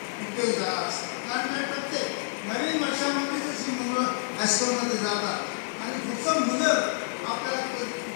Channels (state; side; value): silent; right; digital silence